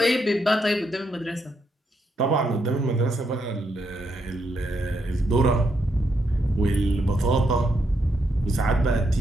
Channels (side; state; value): both; normal; correlation 0.79